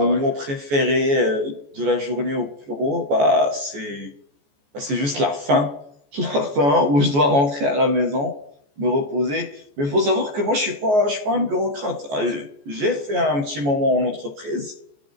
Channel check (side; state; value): left; late; 14 ms